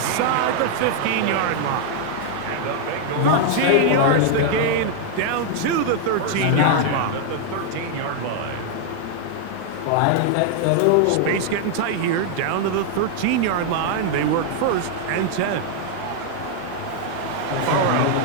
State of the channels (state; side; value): different; both; correlation 0.00